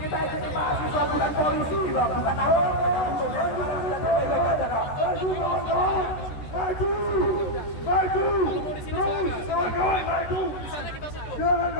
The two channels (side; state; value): right; late; 13 ms